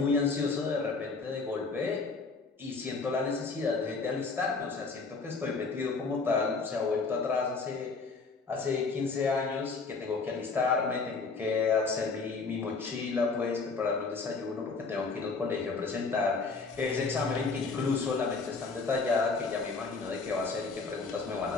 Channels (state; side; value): quieter; right; 4.3 dB